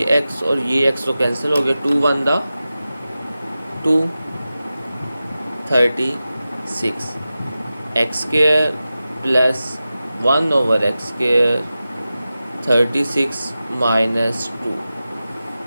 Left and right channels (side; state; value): both; inverted; correlation -0.94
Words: x और ये x तो कैंसिल हो गया, 2 1 दा 2 36 x square plus 1/x square 36 minus 2।